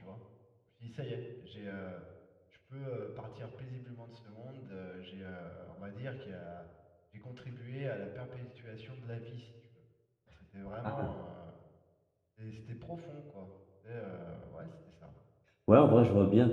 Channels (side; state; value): both; identical; correlation 1.00